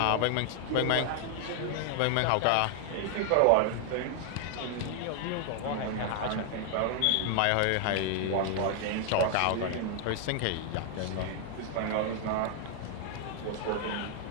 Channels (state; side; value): different; both; correlation 0.00